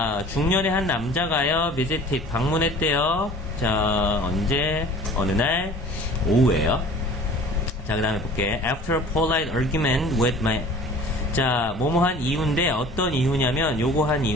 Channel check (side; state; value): both; normal; correlation 0.45